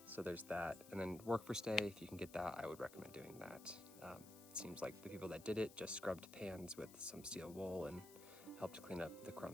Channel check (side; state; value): left; noise; hiss, 17 dB below the sound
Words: So there's that. And then work for stay, if you can get that, I would recommend doing that. It seems like the people that did it just scrubbed pans with some steel wool and helped clean up the